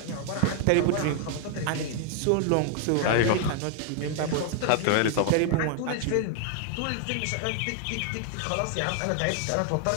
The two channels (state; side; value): different; both; correlation 0.00